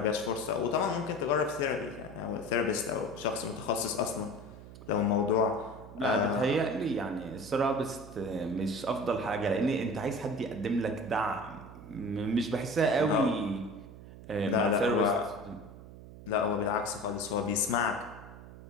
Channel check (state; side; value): noise; right; hum, 16 dB below the sound